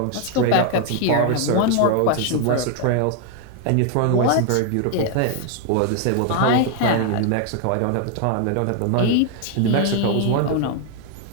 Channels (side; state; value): both; different; correlation 0.01